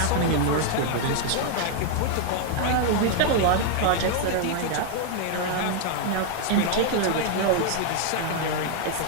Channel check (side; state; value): both; different; correlation 0.00